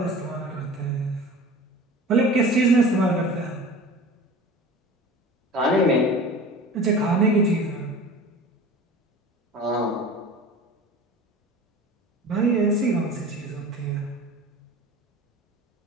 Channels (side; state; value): both; normal; correlation 0.38